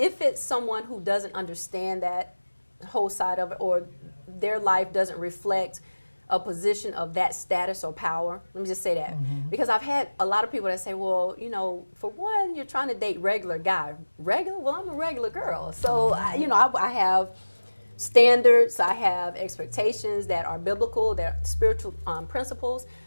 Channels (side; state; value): both; inverted; correlation -1.00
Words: it's someone who doesn't understand that whole side of it, or their life doesn't reflect a position of that status or power, let me just say that. Because I've had a lot of people that say, well, you know, for one, you're trying to date regular guy. Regular? Well, I'm a regular girl. So, you know, I have standards, I have expectations that are biblical, that are spiritual principles.